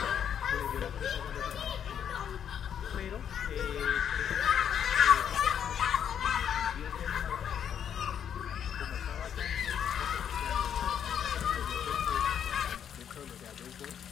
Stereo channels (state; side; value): quieter; right; 8.7 dB